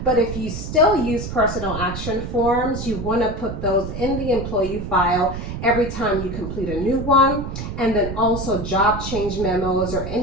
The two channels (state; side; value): noise; right; rumble, 7 dB below the sound